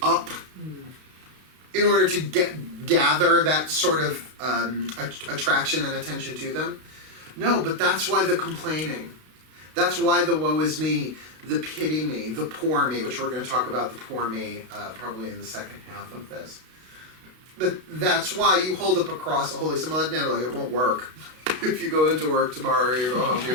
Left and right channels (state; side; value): late; left; 32 ms